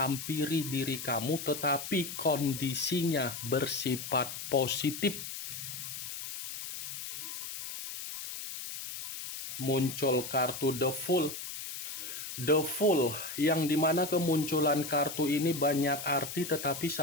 diri kamu, tetapi kondisinya bersifat positif. Muncul kartu The Fool. The Fool, yang dimana kemunculan kartu ini banyak arti, tetapi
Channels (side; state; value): left; noise; hiss, 7 dB below the sound